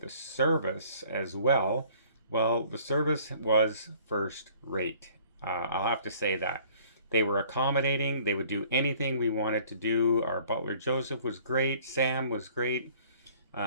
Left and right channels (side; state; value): both; inverted; correlation -0.55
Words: service as well. Well, the service was first rate. I'll have to say that. They were accommodating. They would do anything we wanted to do. Our butler Joseph was great. Sam was great.